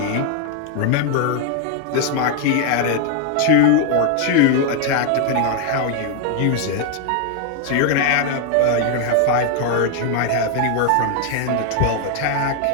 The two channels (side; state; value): both; different; correlation 0.01